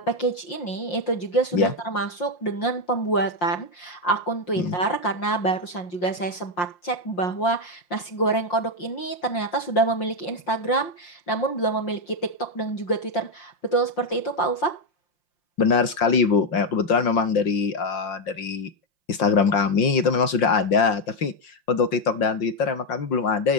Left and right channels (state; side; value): late; right; 5.7 ms